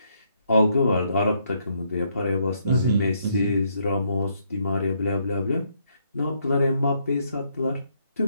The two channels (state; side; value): inverted; both; correlation -0.73